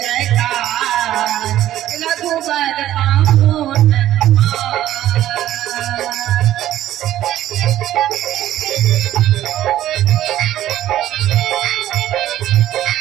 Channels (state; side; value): quieter; left; 13.0 dB